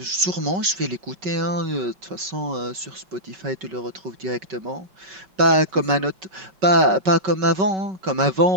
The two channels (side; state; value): left; late; 5.3 ms